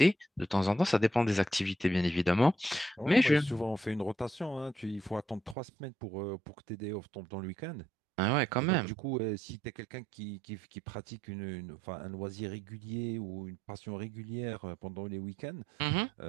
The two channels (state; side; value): drops out; left; at 5.6 s